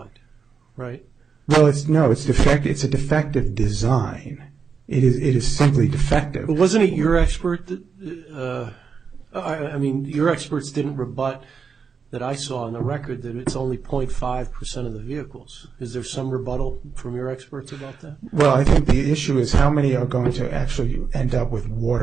right? Well, it's defective. It's a defective design. It is simply defective. But wasn't it your expert that... your experts didn't rebut that I saw in the record that it's only 0.5% of the vehicles. Is there some rebuttal from your experts about that? Well, I think the issue is how many are going to actually end up with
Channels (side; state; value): left; quieter; 5.8 dB